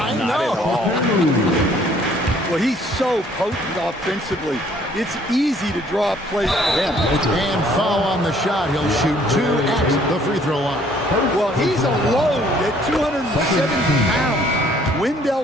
Not at all. Well, he's so potent offensively. It's easy to draw up plays for him. And foul on the shot. He'll shoot 2 at the free throw line. Well, he's a load at 270 pounds.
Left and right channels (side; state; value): both; normal; correlation 0.60